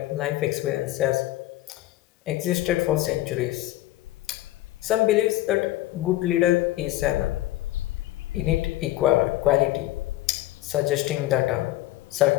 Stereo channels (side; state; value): right; quieter; 15.9 dB